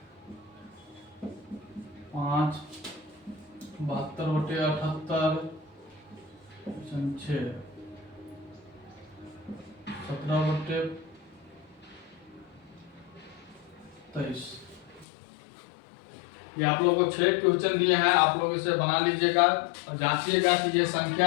5 72/78 6 17/23। ये आप लोगों को 6 क्वेश्चन दिए हैं, आप लोग इसे बना लीजिएगा और जांचिएगा कि ये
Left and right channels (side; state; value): right; drops out; at 15.1 s